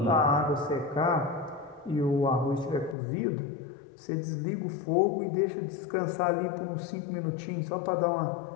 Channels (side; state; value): right; drops out; at 3.0 s